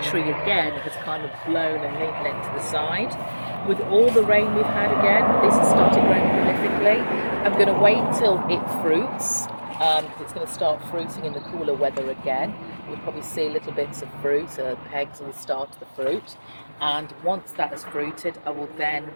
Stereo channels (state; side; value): inverted; both; correlation -1.00